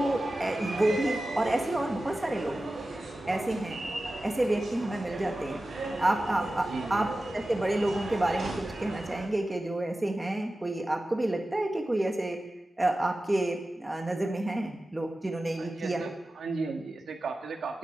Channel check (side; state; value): both; normal; correlation 0.94